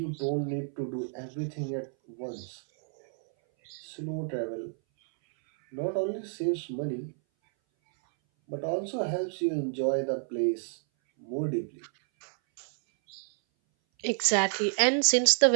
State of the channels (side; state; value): left; silent; 58 dB below the other